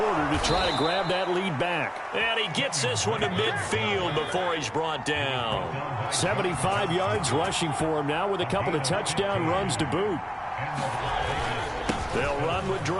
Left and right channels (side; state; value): both; identical; correlation 1.00